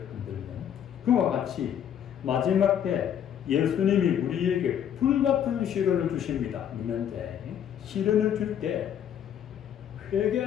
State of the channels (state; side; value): quieter; right; 9.4 dB